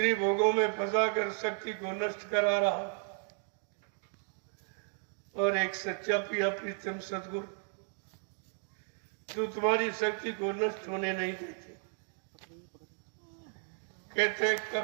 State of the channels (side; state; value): left; silent; 55 dB below the other